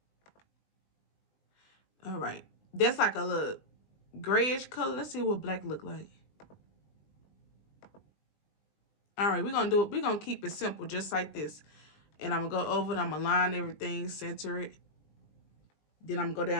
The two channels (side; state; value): right; late; 20 ms